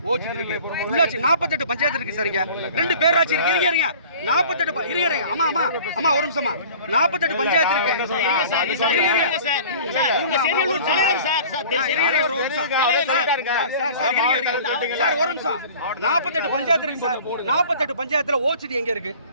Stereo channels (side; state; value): both; inverted; correlation -0.46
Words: இருக்கு. உள்ளாட்சி 48 பஞ்சாயத்து இருக்கு சார். இங்க 2 பேராட்சி இருக்கு. இருங்க 48 இருங்க. அம்மா ஒரு நிமிஷமா 48 பஞ்சாயத்து இருக்கு. இருங்க சார் ஒரு நிமிஷம். 48 பஞ்சாயத்து இருக்கு சார். 48 பஞ்சாயத்துல ஓசிடி எங்க இருக்கு?